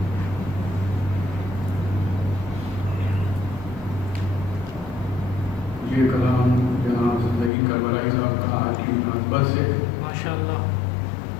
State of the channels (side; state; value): right; drops out; at 7.5 s